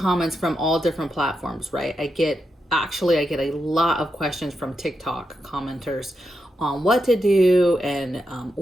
from all different platforms, right? I get a lot of questions from TikTok commenters on what to do and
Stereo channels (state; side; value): normal; both; correlation 0.85